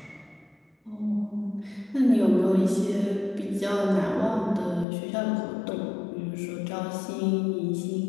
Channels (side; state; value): right; drops out; at 4.9 s